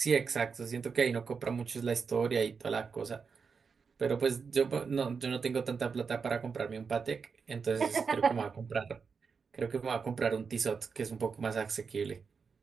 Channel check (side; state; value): left; quieter; 5.6 dB